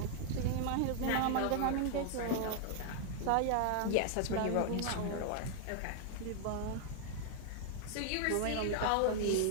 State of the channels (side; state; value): both; different; correlation 0.00